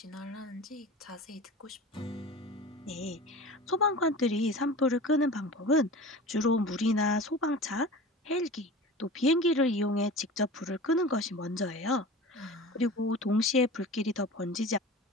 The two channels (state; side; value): normal; both; correlation 0.36